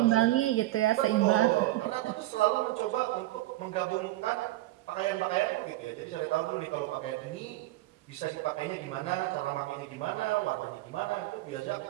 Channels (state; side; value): quieter; left; 16.8 dB